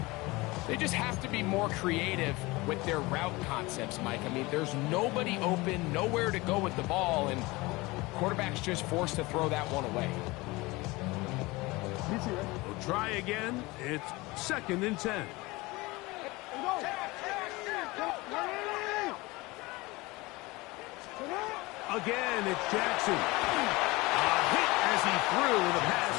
They just have to be more creative with their route concepts, Mike. I mean, there's nobody open, nowhere to go with the ball, and quarterback's just forced to throw that one away. We'll try again. It's 2nd and 10. Again, it's Jackson. Hit as he threw. The pass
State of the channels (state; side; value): quieter; right; 22.4 dB